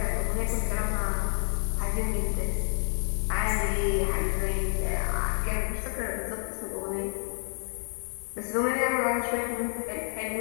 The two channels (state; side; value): silent; right; digital silence